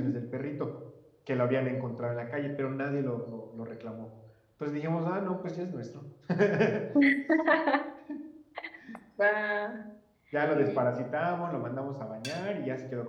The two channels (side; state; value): both; identical; correlation 1.00